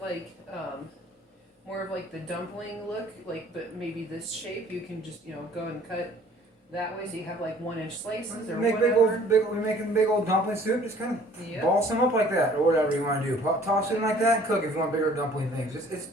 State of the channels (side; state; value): both; normal; correlation 0.54